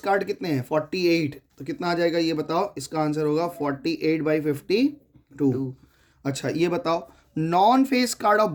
कितने हैं? 48। तो कितना आ जाएगा ये बताओ? इसका आंसर होगा 48/52। अच्छा, ये बताओ, non face card of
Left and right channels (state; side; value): identical; both; correlation 1.00